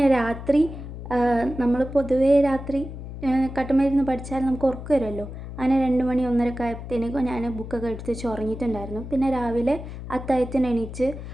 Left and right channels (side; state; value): left; noise; hum, 10 dB below the sound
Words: രാത്രി നമ്മൾ പൊതുവേ രാത്രി കട്ടുമരുന്ന് പഠിച്ചാൽ നമുക്ക് ഉറക്കം വരുമല്ലോ. അങ്ങനെ 2 മണി 1:30 ആയപ്പോഴത്തേക്കും ഞാൻ ബുക്കൊക്കെ എടുത്ത് വെച്ച് ഉറങ്ങിയിട്ടുണ്ടായിരുന്നു. പിന്നെ രാവിലെ അത്താഴത്തിന് എണീച്ച്